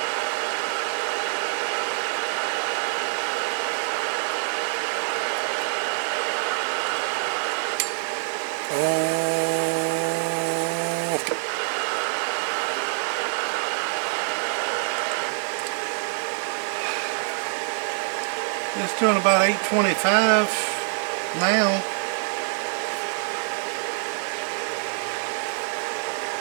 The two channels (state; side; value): silent; left; 59 dB below the other